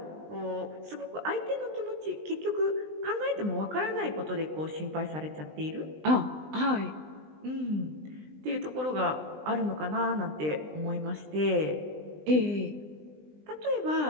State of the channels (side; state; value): left; late; 20 ms